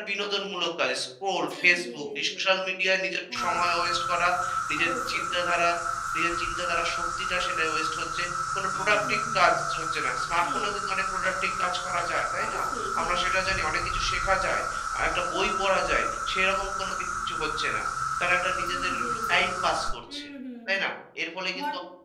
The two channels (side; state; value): both; identical; correlation 1.00